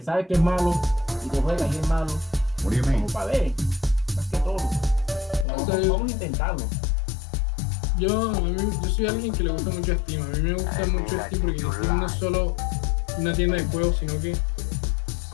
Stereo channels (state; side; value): drops out; right; at 5.5 s